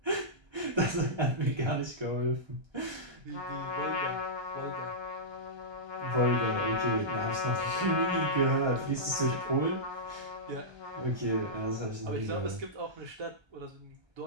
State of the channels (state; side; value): late; left; 1.3 ms